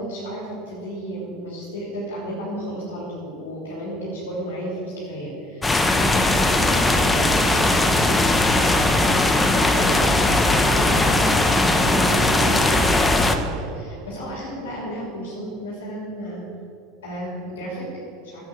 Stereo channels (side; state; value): both; normal; correlation 0.71